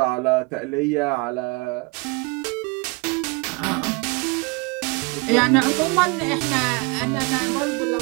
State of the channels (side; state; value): left; quieter; 28.7 dB